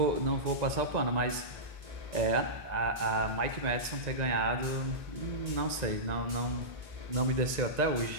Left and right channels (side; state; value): left; late; 1.9 ms